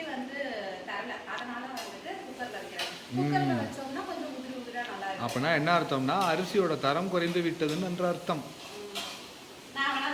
வந்து தரல. அதனால வந்துட்டு குக்கரில் வைக்கிறேன். குக்கரில் வச்சோம்னா கொஞ்சம் உதிரா நல்லா இருக்கும். அப்படின்னா என்ன அர்த்தம்னா அரிசியோட தரம் குறைந்து விட்டதுன்னு என்ற அர்த்தம். நான்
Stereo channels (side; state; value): both; identical; correlation 1.00